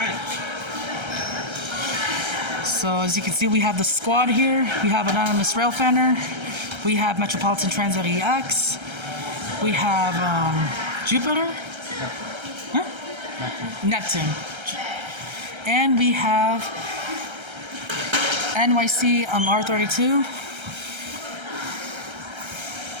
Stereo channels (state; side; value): late; left; 1.3 ms